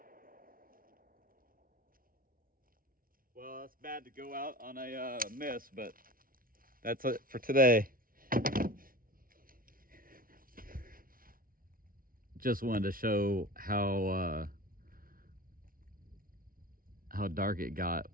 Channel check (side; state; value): left; late; 0.42 ms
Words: Well, it's bad to go out on a miss, but that's it for today. Just wanted to show how dark it got